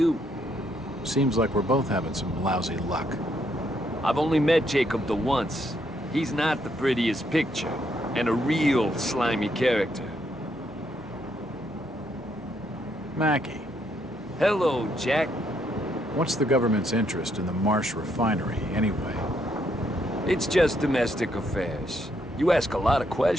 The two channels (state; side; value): normal; both; correlation 0.74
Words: Seems like we're both having some lousy luck. I've only met Jacob the once. He's not the prettiest picture, and a real slimy character. Mackie. Hello, Jack. What's the government's interest in the Marsh refinery, anyway? It's just domestic affairs. You ask a lot of